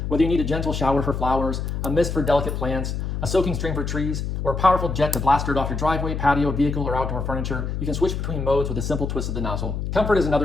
Whether you need a gentle shower for flowers, a mist for delicate plants, a soaking stream for trees, or a powerful jet to blast dirt off your driveway, patio, vehicle, or outdoor furniture, you can switch between modes with a simple twist of the nozzle. Comfort is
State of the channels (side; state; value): left; noise; hum, 3 dB below the sound